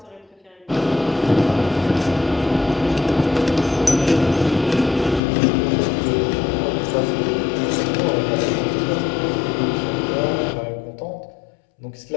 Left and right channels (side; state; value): right; drops out; at 5.2 s